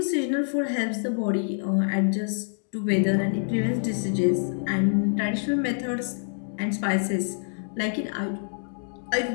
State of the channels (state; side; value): silent; right; digital silence